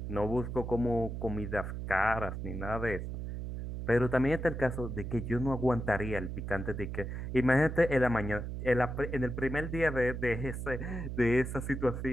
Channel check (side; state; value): right; noise; hum, 5 dB below the sound